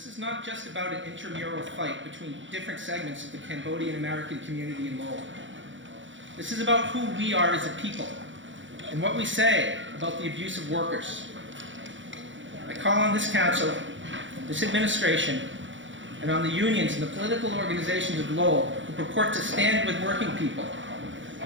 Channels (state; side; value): late; left; 0.55 ms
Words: is not just about an intramural fight between different segments of the Cambodian American community in Lowell. This is about who we are as a people and what we say about the abuse of workers. I call on this council, this administration, and on the unions and the political organizations of Lowell who purport to stand with working people,